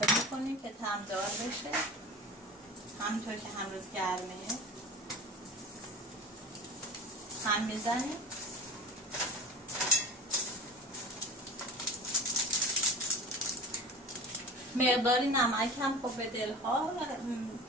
میکنیم که تمدار بشه. همینطور که هنوز گرمه هم میزنیم. مقداری نمک هم خب به دلها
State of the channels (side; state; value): both; normal; correlation 0.34